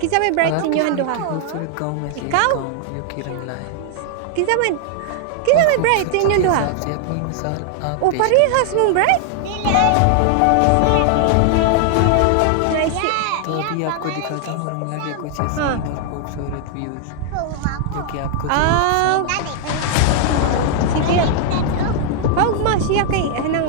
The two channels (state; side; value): different; both; correlation 0.00